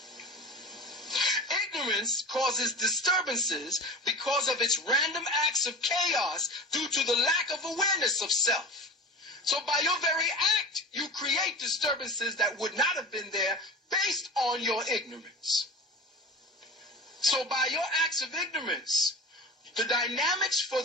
Ignorance causes disturbances because of its random acts of chaos due to the lack of awareness of self. So by your very act, you create disturbances that would not have been there based on your ignorance. So by your acts of ignorance, the dynamics for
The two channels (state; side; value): normal; both; correlation 0.32